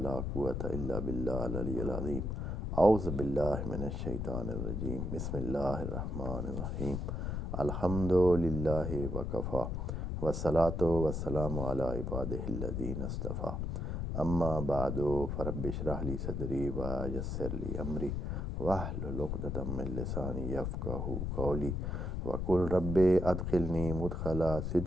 quwwata illa billah al-aliyyil azim. A'udhu billahi minash shaitanir rajim. Bismillahir rahmanir rahim. Alhamdulillahi wa kafa. Wa salatu wa salamu ala ibadihi alladhina istafa. Amma ba'du, farabbi shrah li sadri wa yassir li amri wahlul 'uqdatam min lisani yafqahu qawli wa qul rabbi adkhilni mudkhala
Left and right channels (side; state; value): left; noise; rumble, 2 dB below the sound